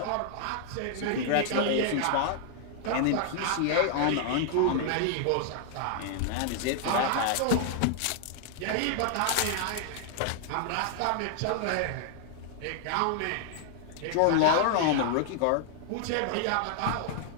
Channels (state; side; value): different; both; correlation 0.00